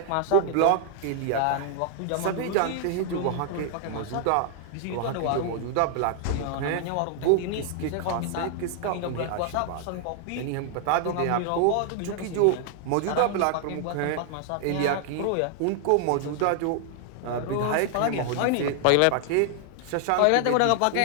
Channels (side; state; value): both; different; correlation 0.00